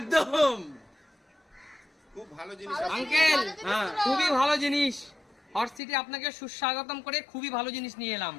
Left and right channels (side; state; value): right; drops out; at 5.8 s